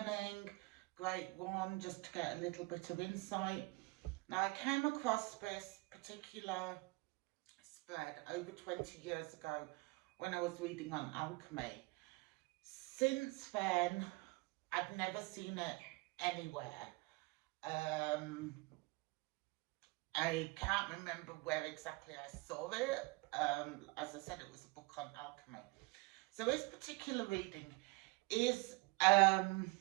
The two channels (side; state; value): left; quieter; 25.7 dB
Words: Great one just to get a little bit of insight. Now, I came across this particular spread over 20 years ago when I was reading on alchemy. Since then, I've never seen it anywhere. Um, I can't remember where exactly I saw it. As I said, it was a book on alchemy. So this particular reading is